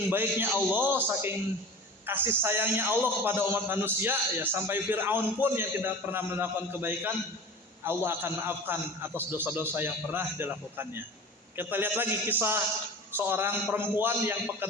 baiknya Allah, saking kasih sayangnya Allah kepada umat manusia ya, sampai Fir'aun pun yang tidak pernah melakukan kebaikan, Allah akan maafkan atas dosa-dosa yang pernah dilakukannya. Kita lihat lagi kisah seorang perempuan yang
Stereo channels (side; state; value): both; normal; correlation 0.36